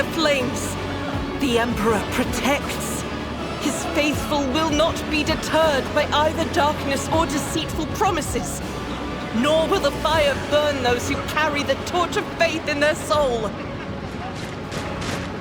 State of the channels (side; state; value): both; identical; correlation 1.00